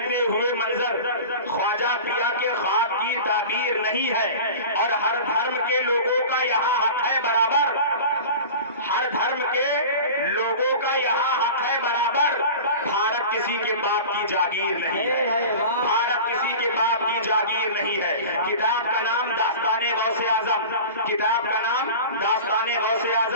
ہوئے منظر، خواجہ پیا کے خواب کی تعبیر نہیں ہے، اور ہر دھرم کے لوگوں کا یہاں حق ہے برابر، ہر دھرم کے لوگوں کا یہاں حق ہے برابر، بھارت کسی کے باپ کی جاگیر نہیں ہے، بھارت کسی کے باپ کی جاگیر نہیں ہے۔ کتاب کا نام داستان غوث اعظم، کتاب کا نام داستان غوث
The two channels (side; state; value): both; inverted; correlation -0.35